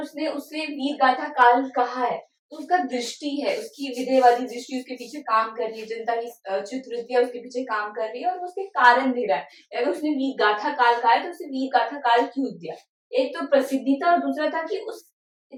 उसने उसे वीर गाथा काल कहा है तो उसका दृष्टि है, उसकी विधेयवादी दृष्टि उसके पीछे काम कर रही है, जनता की चित्रवृत्तियां उसके पीछे काम कर रही है और उसके कारण दे रहा है। अगर उसने वीर गाथा काल कहा है तो उसे वीर गाथा काल क्यों दिया? एक तो प्रसिद्धि था और दूसरा था कि उस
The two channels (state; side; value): identical; both; correlation 1.00